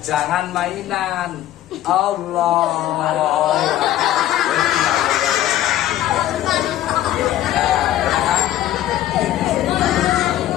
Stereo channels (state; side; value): quieter; right; 13.2 dB